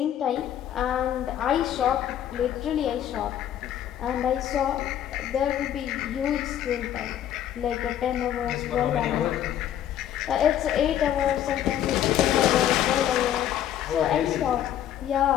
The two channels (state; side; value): quieter; right; 10.9 dB